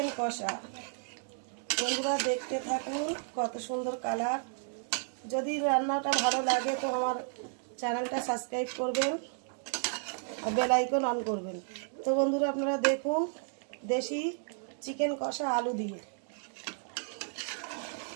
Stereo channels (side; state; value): left; silent; 56 dB below the other